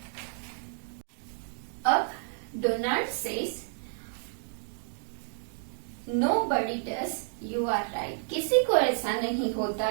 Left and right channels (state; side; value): silent; left; digital silence